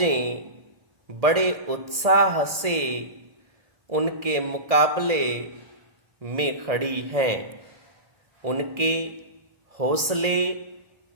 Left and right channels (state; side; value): late; left; 1.7 ms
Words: बड़े उत्साह से उनके मुकाबले में खड़ी हैं। उनके हौसले